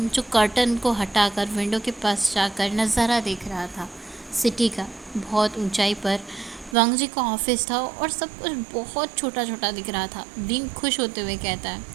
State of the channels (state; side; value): drops out; left; at 6.8 s